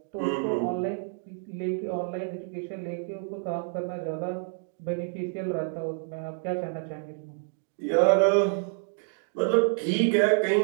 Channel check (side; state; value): left; silent; 59 dB below the other